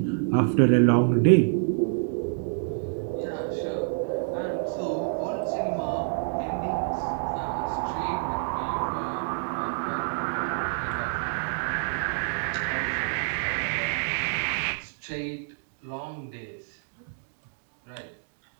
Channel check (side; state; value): left; silent; digital silence